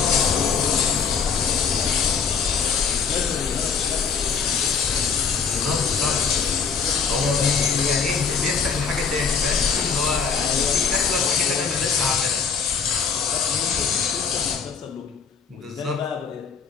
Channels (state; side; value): quieter; right; 6.0 dB